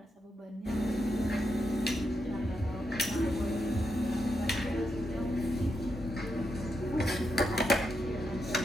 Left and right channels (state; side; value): normal; both; correlation 0.83